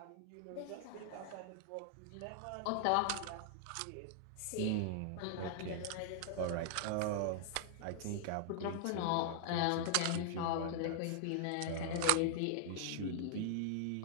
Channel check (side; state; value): both; different; correlation 0.00